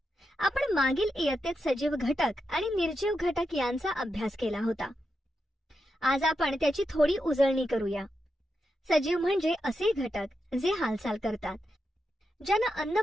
आपण मागील इयत्तेत सजीव घटक आणि निर्जीव घटक यांचा अभ्यास केला होता. आज आपण त्याची थोडी उजळणी करूया. सजीव म्हणजे असे घटक जे हालचाल करतात, ज्यांना अन्न,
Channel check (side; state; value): both; normal; correlation 0.87